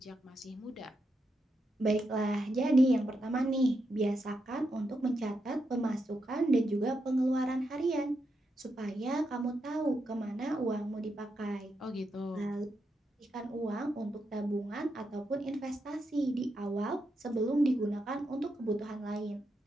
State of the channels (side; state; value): both; normal; correlation 0.84